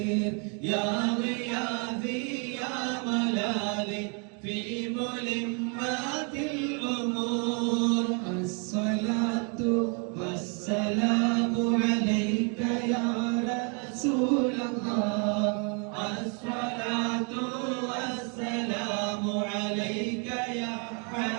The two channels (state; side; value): quieter; left; 37.6 dB